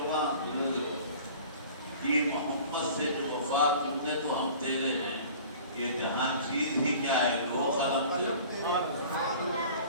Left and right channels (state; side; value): inverted; both; correlation -0.45